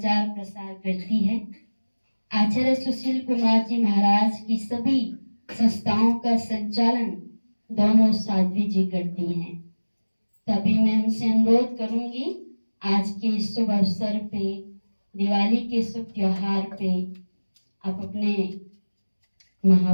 प्रसार करती है। आचार्य सुशील कुमार जी महाराज की सभी संस्थाओं का संचालन दोनों साध्वी जी करती हैं। तभी मैं उनसे अनुरोध करूंगी, आज के शुभ अवसर पे, दिवाली के शुभ त्योहार पे, आप अपने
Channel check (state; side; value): inverted; both; correlation -1.00